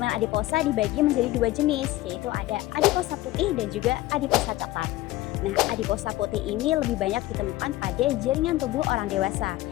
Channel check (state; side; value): quieter; right; 17.0 dB